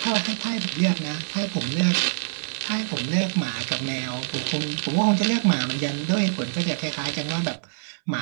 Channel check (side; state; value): left; silent; 62 dB below the other